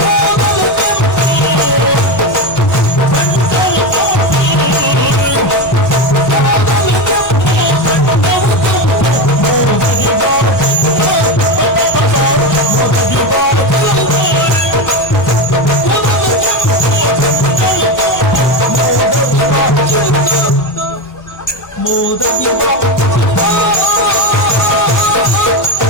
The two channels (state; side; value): late; right; 1.3 ms